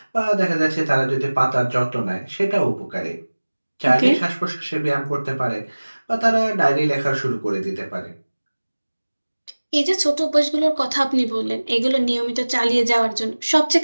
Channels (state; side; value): inverted; both; correlation -1.00